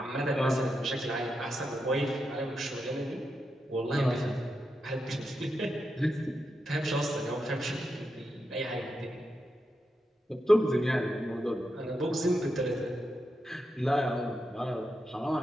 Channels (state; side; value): normal; both; correlation 0.86